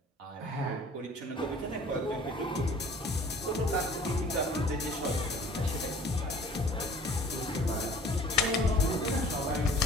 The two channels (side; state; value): both; normal; correlation 0.50